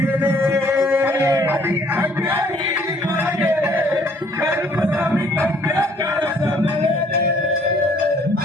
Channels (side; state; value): both; normal; correlation 0.61